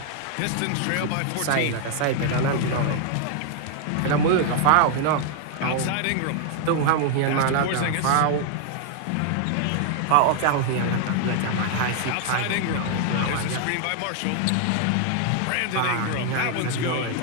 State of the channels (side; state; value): both; different; correlation 0.00